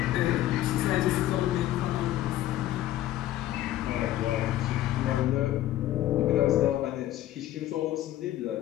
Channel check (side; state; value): right; quieter; 13.8 dB